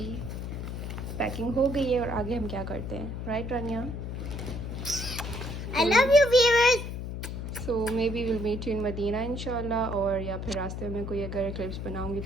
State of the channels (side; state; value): left; noise; hum, 5 dB below the sound